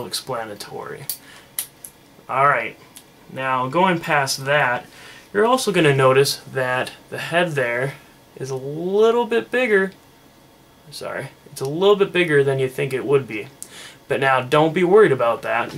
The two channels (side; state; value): both; identical; correlation 1.00